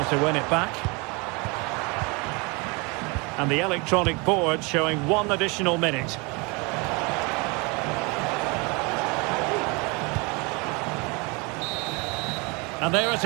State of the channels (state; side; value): quieter; left; 28.8 dB